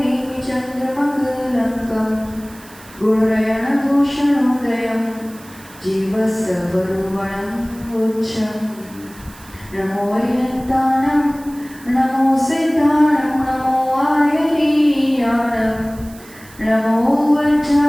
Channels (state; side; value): noise; right; hiss, 22 dB below the sound